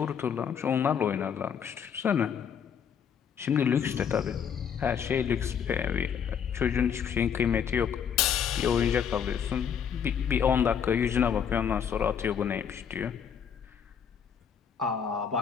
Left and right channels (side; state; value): right; quieter; 7.7 dB